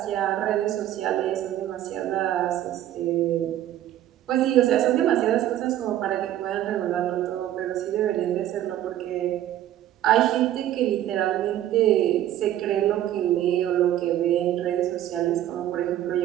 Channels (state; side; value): quieter; left; 12.3 dB